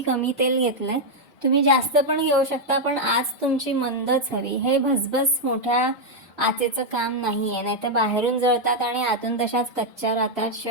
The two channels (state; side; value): normal; both; correlation -0.01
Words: कमी तेल घेतलंय. तुम्ही जास्त पण घेऊ शकता, पण आज तुमची मंदच हवी. हे भसभस मोठ्या आचेचं काम नाही आहे, नाही तर बाहेरून जळतात आणि आतून तशाच कच्च्या राहतात.